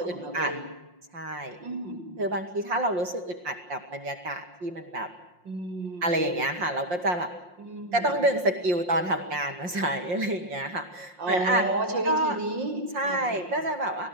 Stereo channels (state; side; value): late; left; 5.6 ms